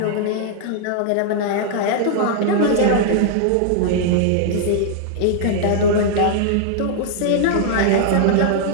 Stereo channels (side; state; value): both; different; correlation -0.01